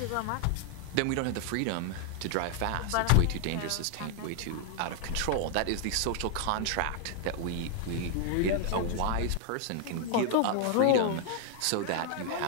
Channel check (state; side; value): different; both; correlation 0.00